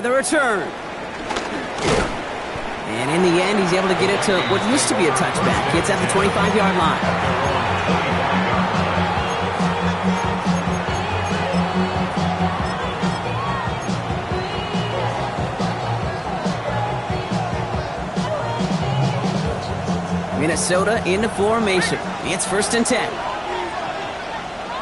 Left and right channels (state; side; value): identical; both; correlation 1.00